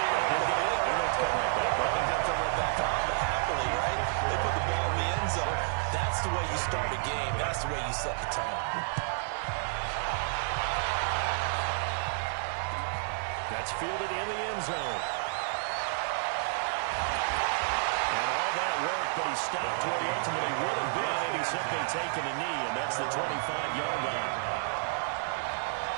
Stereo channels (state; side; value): silent; left; digital silence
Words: it. They're going to throw it back on, but happily, right? They put the ball in the end zone. That's the way you start a game. That's the way you set the tone. That's fielded in the end zone. But he stopped where he ultimately would have been, and he's simply taken a knee, and that's the 25-yard line.